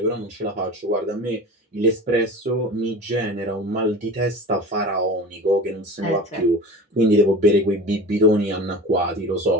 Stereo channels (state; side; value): normal; both; correlation 0.35